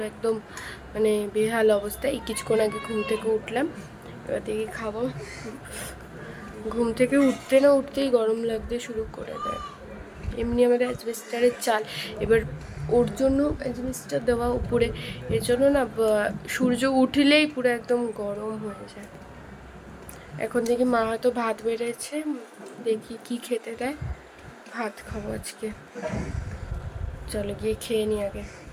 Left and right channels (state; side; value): identical; both; correlation 1.00